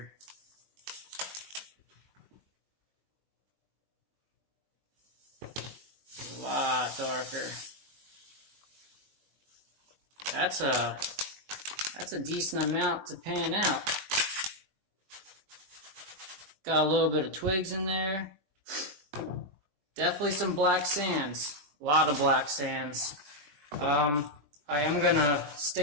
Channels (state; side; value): late; left; 20 ms